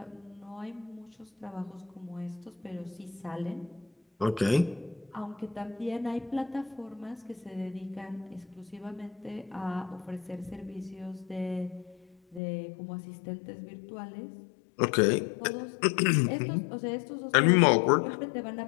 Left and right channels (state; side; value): drops out; right; at 12.4 s